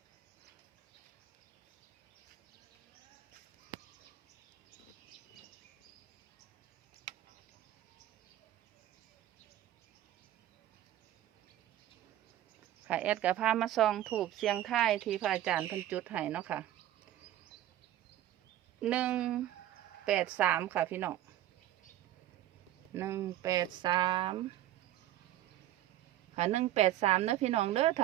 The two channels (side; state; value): left; quieter; 13.1 dB